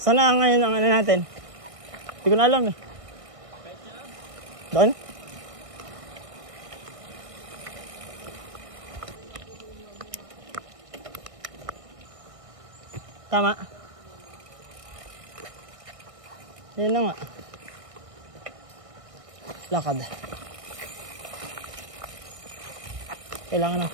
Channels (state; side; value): late; left; 1.6 ms